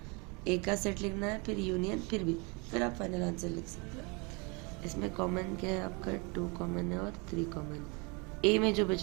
ए का सेट लिखना है, फिर यूनियन, फिर बी, फिर आप फाइनल आंसर लिख सकते हैं। इसमें कॉमन क्या है आपका, 2 कॉमन है और 3 कॉमन। ए में जो बच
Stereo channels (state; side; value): quieter; left; 30.4 dB